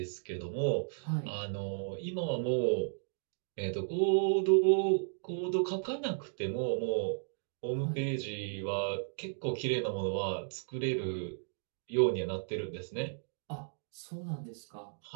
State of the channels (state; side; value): silent; left; digital silence